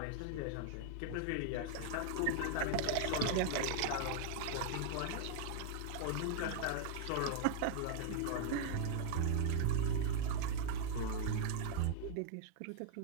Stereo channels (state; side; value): different; both; correlation 0.00